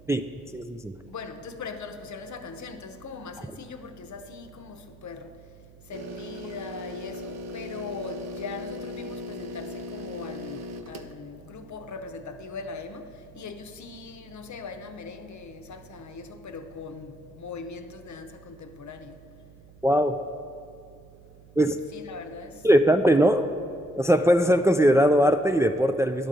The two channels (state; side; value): noise; right; hum, 23 dB below the sound